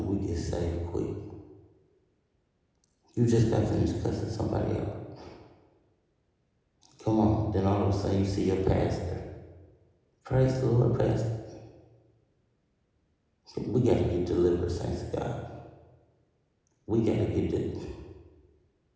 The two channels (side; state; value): both; identical; correlation 1.00